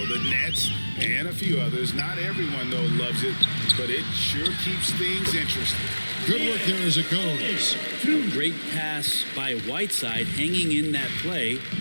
The Nets and a few others. Not everyone, though, loves it, but it sure keeps things interesting. Good work there as it goes. A great pass by Whiteside, hanging in that play.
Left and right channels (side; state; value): both; inverted; correlation -1.00